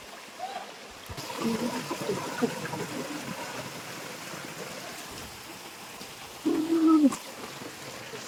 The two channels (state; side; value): identical; both; correlation 1.00